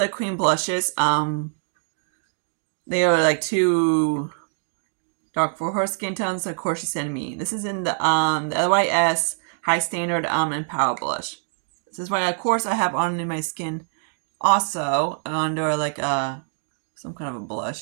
cream blushes. They are like too dark for her skin tones, so of course she sent me. This is in the LYS High Standard and Power Blush. This is why, of course, I have on in my skin also under like some kind of a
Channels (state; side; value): silent; left; digital silence